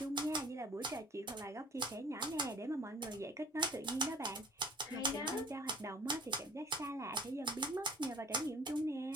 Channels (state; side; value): normal; both; correlation 0.49